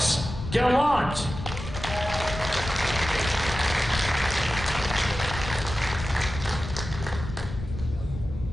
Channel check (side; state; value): left; noise; rumble, 8 dB below the sound